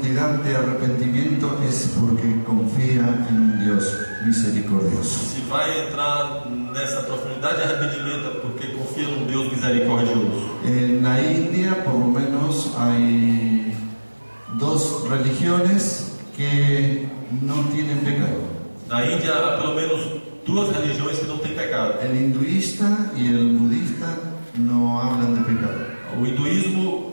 de arrepentimiento es porque confía en un Dios misericordioso. Se vai entrar nessa profundidade de arrependimento é porque confia num Deus misericordioso. En la India, por lo menos, hay dos religiones que no tienen pecado. Na Índia há pelo menos 2 religiões que não têm pecado. El hinduista y el budista no hablan de pecado. O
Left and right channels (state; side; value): inverted; both; correlation -1.00